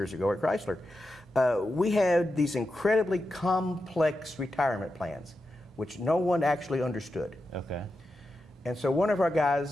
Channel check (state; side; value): normal; both; correlation 0.89